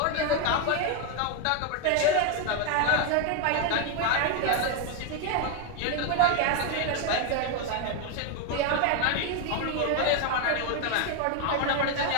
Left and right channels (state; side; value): different; both; correlation 0.01